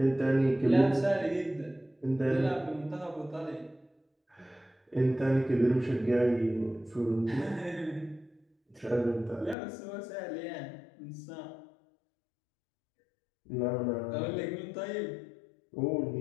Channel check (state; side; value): drops out; right; at 9.6 s